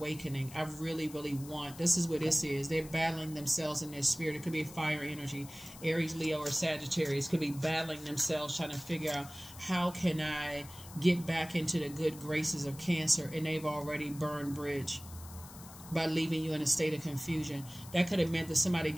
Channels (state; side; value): noise; left; hiss, 17 dB below the sound